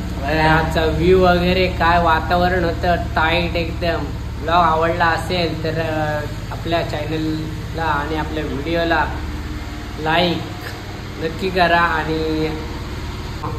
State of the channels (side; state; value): both; identical; correlation 1.00